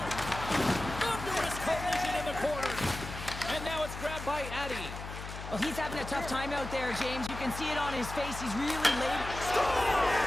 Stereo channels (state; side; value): noise; left; hum, 9 dB below the sound